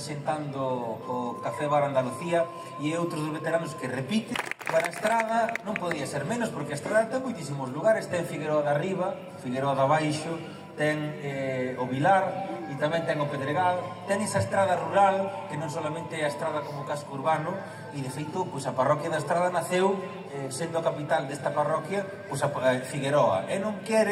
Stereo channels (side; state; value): both; identical; correlation 1.00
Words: o Café Bar Andalucía, e outros dos veteranos que repite. Para a Estrada non podía ser menos, porque a Estrada ten moitísimos lugares, ten Figueroa de Arriba, Figueroa de Abaixo, ten o Vilar, e tamén ten o Pedregal, ten esa estrada rural, que non solamente é a estrada como casco urbano, e de feito, pois a parroquia da Estrada naceu sendo a capital desta parroquia, pois a Figueroa, e non